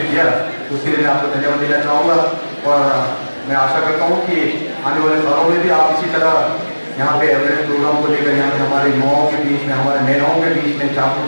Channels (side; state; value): both; inverted; correlation -1.00